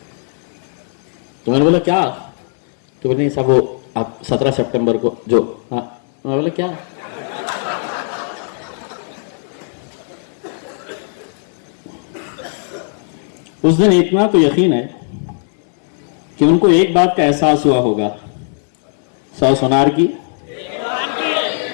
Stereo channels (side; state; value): right; silent; digital silence